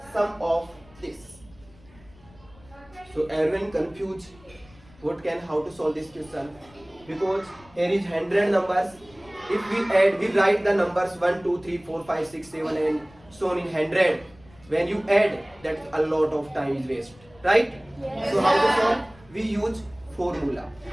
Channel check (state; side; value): noise; left; rumble, 26 dB below the sound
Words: sum of this? So everyone confused what can how to solve this question, because here is 100 numbers. If we add, we write the numbers 1, 2, 3, 4, 5, 6, 7 and so on in 100. When you add, that a lot of time is waste, right? Yes, so how to sir. solve? We use formula.